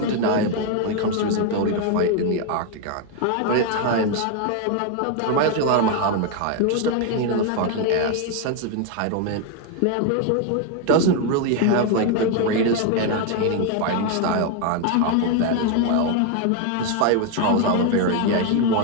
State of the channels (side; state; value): both; different; correlation 0.01